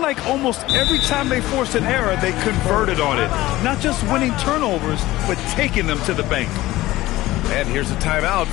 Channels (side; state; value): right; quieter; 17.2 dB